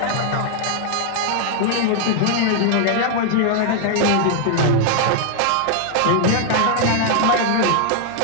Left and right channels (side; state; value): both; different; correlation 0.00